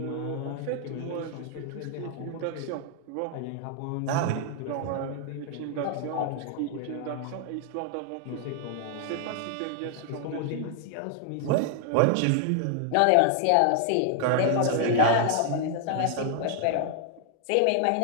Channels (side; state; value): both; different; correlation 0.00